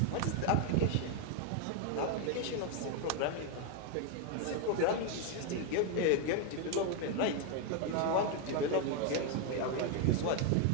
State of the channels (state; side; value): different; both; correlation 0.01